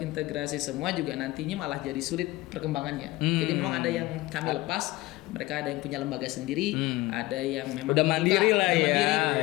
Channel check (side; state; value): right; quieter; 18.9 dB